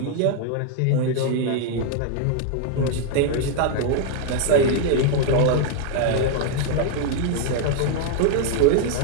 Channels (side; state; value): both; different; correlation 0.00